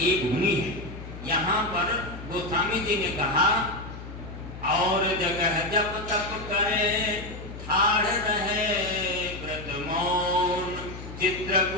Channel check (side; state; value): left; noise; hum, 12 dB below the sound